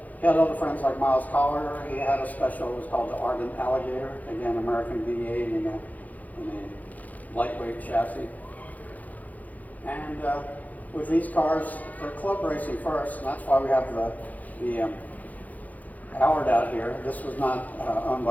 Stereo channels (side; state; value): right; late; 0.079 ms